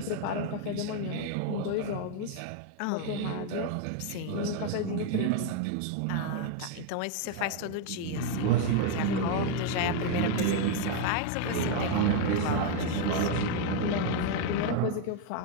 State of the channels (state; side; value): different; both; correlation 0.01